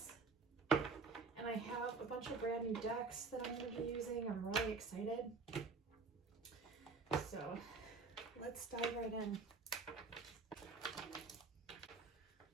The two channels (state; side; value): quieter; left; 4.3 dB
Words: And I have a bunch of brand new decks that I'm going to be using. I'm really excited. So let's dive right in.